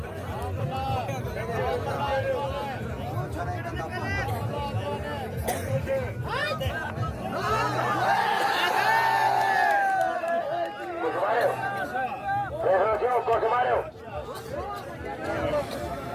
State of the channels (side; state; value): both; identical; correlation 1.00